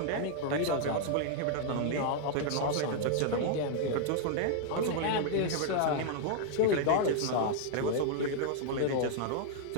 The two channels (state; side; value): different; both; correlation 0.00